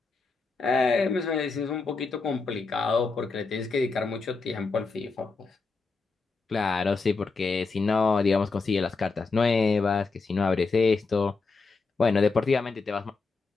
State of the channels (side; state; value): right; quieter; 4.2 dB